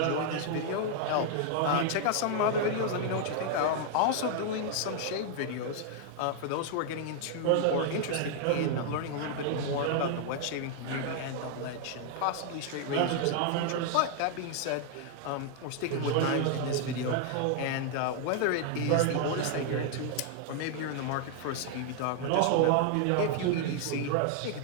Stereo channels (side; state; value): both; different; correlation 0.00